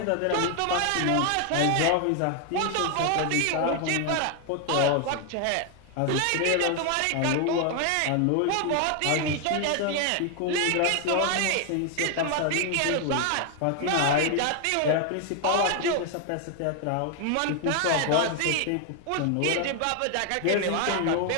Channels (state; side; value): different; both; correlation 0.00